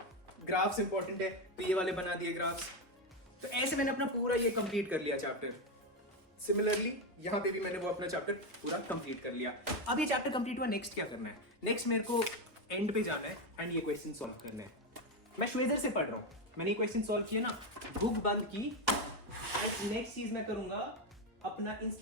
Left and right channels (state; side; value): normal; both; correlation 0.10